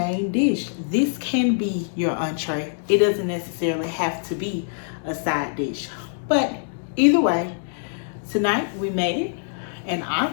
dish. This can be your entree. It doesn't necessarily have to be a side dish. But either way, tonight we made it, and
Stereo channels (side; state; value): right; silent; digital silence